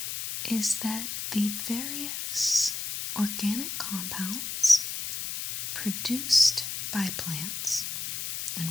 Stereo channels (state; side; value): noise; left; hiss, 5 dB below the sound